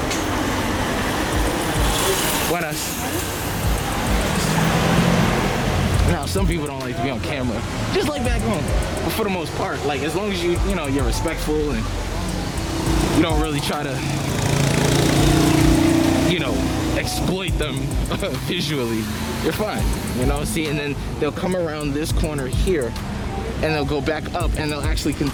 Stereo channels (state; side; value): identical; both; correlation 1.00